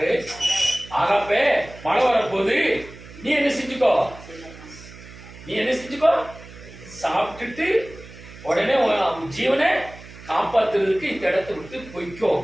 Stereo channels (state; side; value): noise; right; hum, 18 dB below the sound